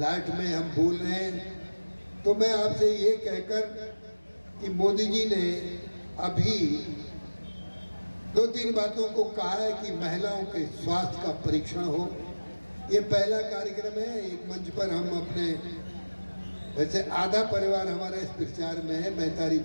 में हम बोल रहे हैं, तो मैं आपसे ये कहकर कि मोदी जी ने अभी 2-3 बातों को कहा है कि महिलाओं के स्वास्थ्य का परीक्षण हो। ये पहला कार्यक्रम है, एक मंच पर हम अपने, वैसे आधा परिवार हमारा इस प्रचार में है महतारी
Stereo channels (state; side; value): inverted; both; correlation -1.00